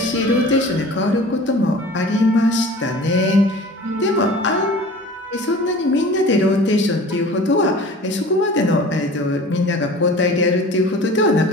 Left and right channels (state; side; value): normal; both; correlation 0.42